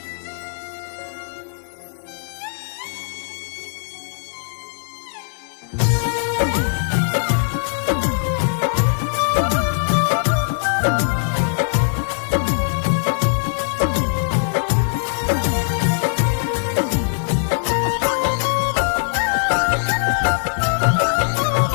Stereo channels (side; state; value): right; silent; 59 dB below the other